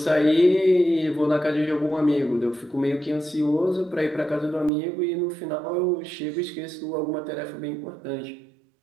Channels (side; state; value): left; drops out; at 4.7 s